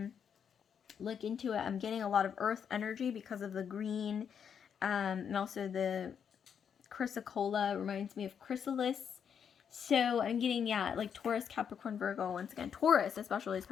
look into it, I'm getting a lot of earth energy because of the green, and also the chrysocolla reminds me of chrysalis. So I'm getting, yeah, like Taurus, Capricorn, Virgo. Once again, Taurus especially is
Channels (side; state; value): right; quieter; 7.6 dB